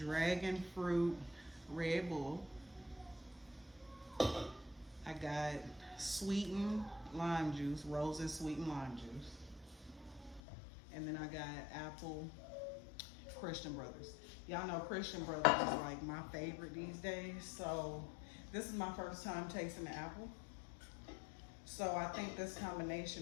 fruit Red Bull. I got sweetened lime juice, roses sweetened lime juice. And then I got apple Christian Brothers. Y'all know Christian Brothers is like my favorite these days. So this is my first time tasting the apple. So I think this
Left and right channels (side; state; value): right; drops out; at 10.4 s